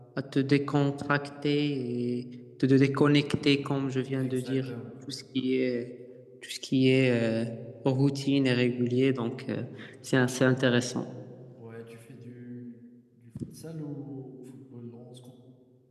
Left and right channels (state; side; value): identical; both; correlation 1.00